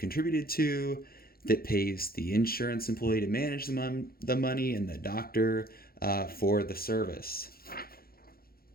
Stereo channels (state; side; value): late; right; 0.44 ms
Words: to, that pays the insurance employee to manage the money and the doctor for the service.